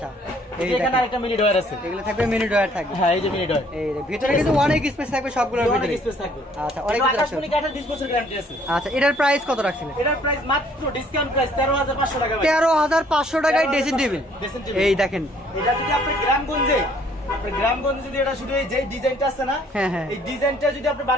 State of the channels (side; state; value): both; normal; correlation 0.61